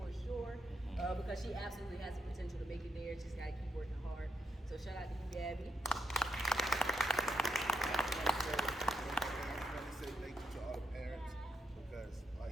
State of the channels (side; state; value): both; normal; correlation 0.80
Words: sure, because she absolutely has the potential to make it there. She's got to keep working hard. So shout out to you, Gabby. I want to say thank you to all the parents, because, like